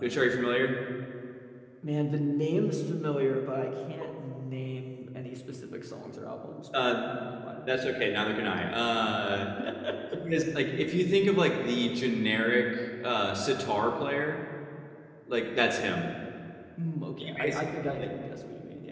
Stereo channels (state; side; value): identical; both; correlation 1.00